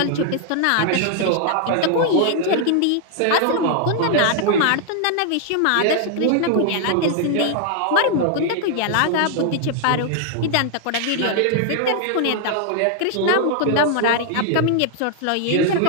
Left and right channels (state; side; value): different; both; correlation 0.00